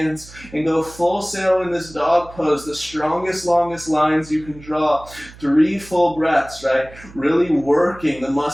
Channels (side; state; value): right; noise; hum, 20 dB below the sound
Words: and go full sail in this dog pose, the strongest, longest lines you can draw. 3 full breaths, right? Really working the